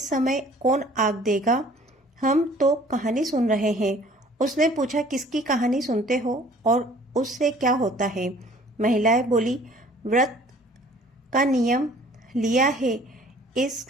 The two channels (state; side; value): normal; both; correlation 0.53